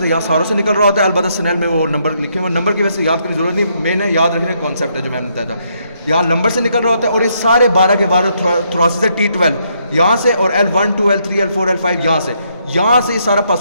यहाँ सारों से निकल रहा होता है। अलबत्ता स्नेल में वो नंबर लिखे हुए, नंबर की वजह से याद करने की जरूरत नहीं, मैंने याद रखने का कॉन्सेप्ट है जो मैंने बताया था। यहाँ नंबर से निकल रहा होता है और ये सारे 12 के 12 थोरासिस है T12 यहाँ से, और L1, 2, L3, L4, L5 यहाँ से ये सारा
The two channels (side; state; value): both; inverted; correlation -0.74